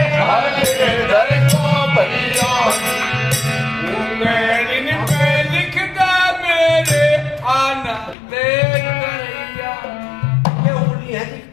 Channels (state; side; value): drops out; right; at 8.2 s